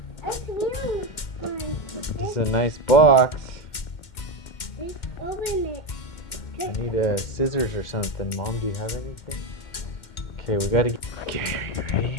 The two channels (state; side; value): late; right; 2.1 ms